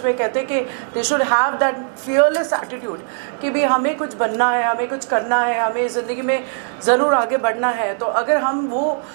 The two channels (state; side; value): silent; left; digital silence